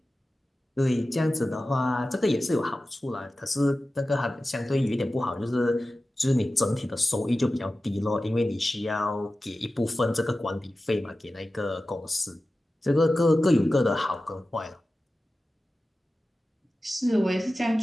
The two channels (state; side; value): normal; both; correlation 0.95